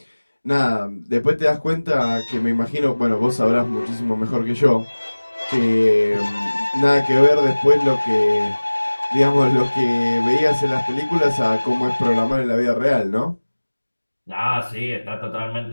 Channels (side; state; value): both; inverted; correlation -1.00